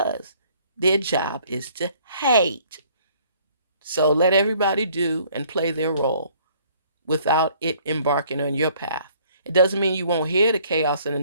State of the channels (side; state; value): both; inverted; correlation -0.59